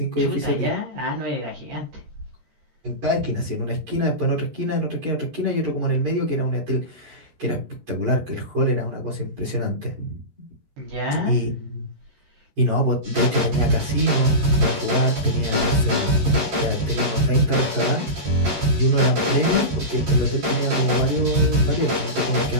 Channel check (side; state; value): left; late; 13 ms